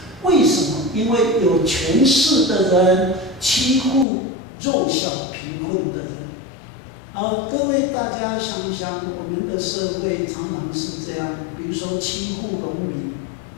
为什么？因为有权势的人欺负弱小贫困的人。”各位大家想想，我们的社会常常是这样，比如说欺负农民。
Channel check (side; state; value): right; drops out; at 4.0 s